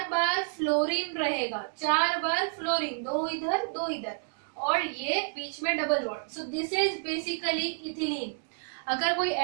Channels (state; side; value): silent; left; digital silence